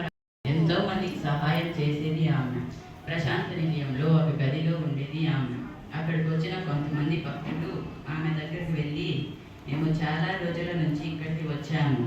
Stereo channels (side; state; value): both; identical; correlation 1.00